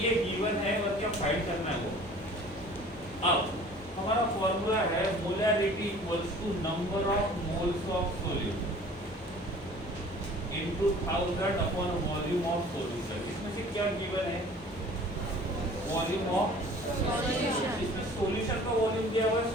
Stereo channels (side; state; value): both; normal; correlation 0.47